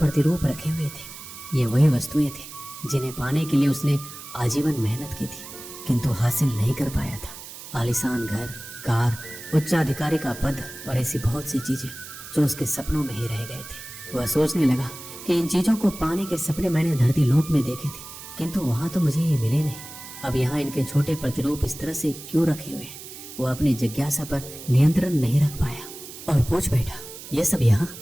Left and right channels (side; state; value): right; noise; hiss, 13 dB below the sound